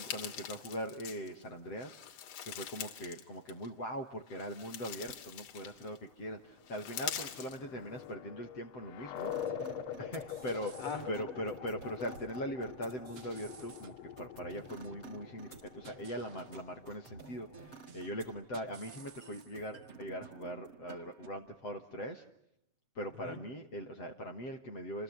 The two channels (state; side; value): late; right; 8.2 ms